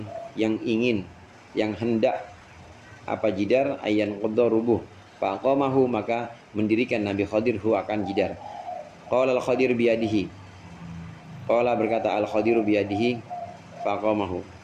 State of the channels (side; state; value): both; identical; correlation 1.00